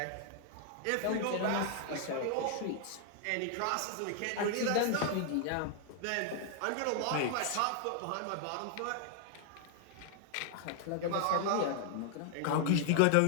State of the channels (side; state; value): both; different; correlation 0.00